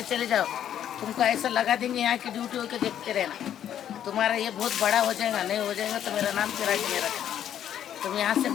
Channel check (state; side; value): quieter; right; 10.2 dB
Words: चले जाओ। तुमको ऐसा लगा देंगे यहाँ की ड्यूटी होके देखते रहना। तुम्हारा ये बहुत बड़ा हो जाएगा, नहीं हो जाएगा तो मेरा नाम चिराग नहीं रखना। तुम यहाँ से